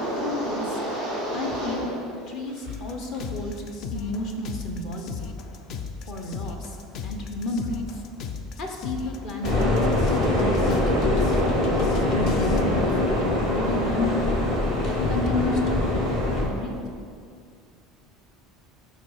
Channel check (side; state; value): both; normal; correlation 0.38